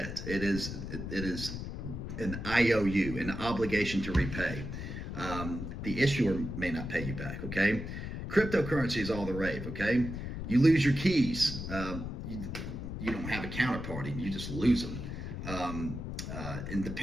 it is an IOU, an obligation to repay. The issuer may not pay you back, okay? Cryptocurrency is all the rave, okay? You lose your keys. You don't have a counterparty. You just lose them. And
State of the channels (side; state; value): left; noise; rumble, 6 dB below the sound